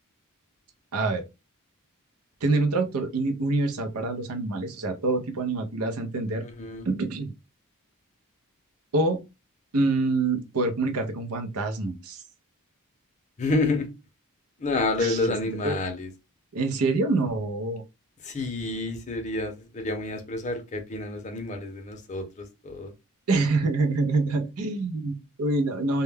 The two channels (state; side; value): normal; both; correlation 0.47